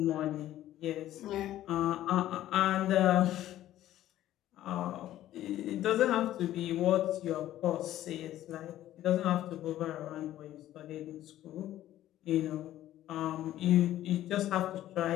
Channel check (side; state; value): right; quieter; 13.4 dB